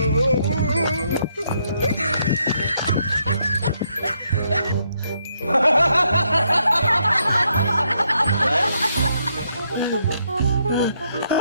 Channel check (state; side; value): inverted; both; correlation -0.75